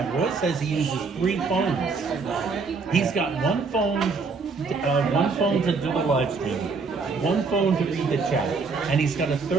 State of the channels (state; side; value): quieter; left; 4.6 dB